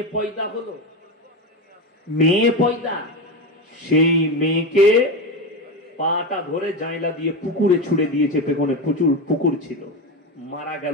পয়দা হলো, মেয়ে পয়দা। সেই মেয়েকে পাটা ধরে জাইলা দিয়ে পুকুরে ছুড়ে দিয়েছে, পেছনে প্রচুর পুকুর ছিল, মারা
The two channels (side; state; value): both; normal; correlation 0.18